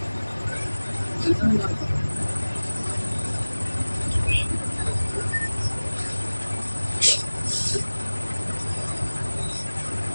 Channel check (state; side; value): inverted; both; correlation -1.00